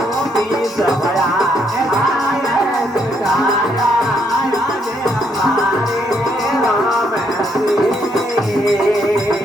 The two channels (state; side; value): normal; both; correlation 0.73